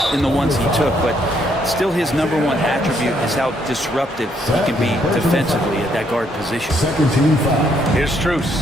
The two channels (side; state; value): both; normal; correlation 0.71